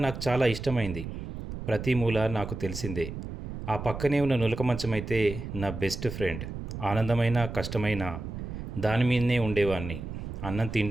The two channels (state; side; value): noise; right; rumble, 8 dB below the sound